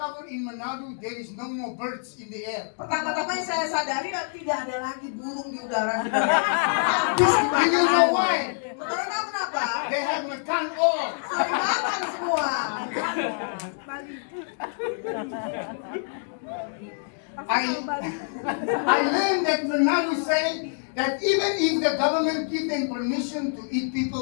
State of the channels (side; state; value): right; silent; digital silence